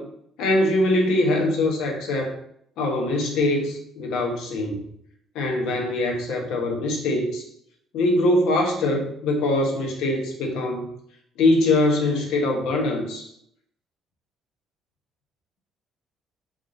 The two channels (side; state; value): both; normal; correlation 0.57